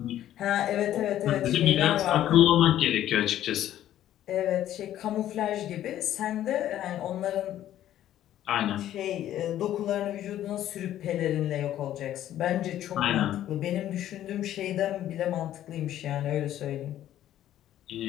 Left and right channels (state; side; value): quieter; right; 12.3 dB